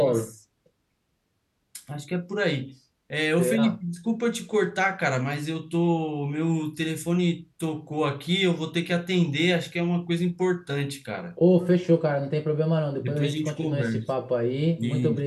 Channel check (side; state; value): both; identical; correlation 1.00